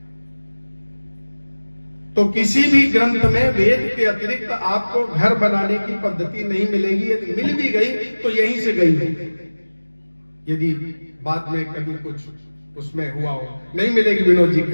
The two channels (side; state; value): both; inverted; correlation -1.00